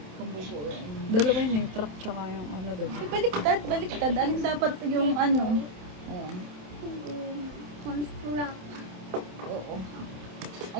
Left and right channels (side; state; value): left; late; 27 ms